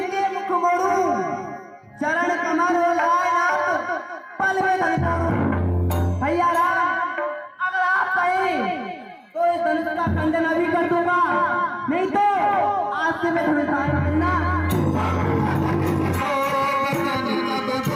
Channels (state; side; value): identical; both; correlation 1.00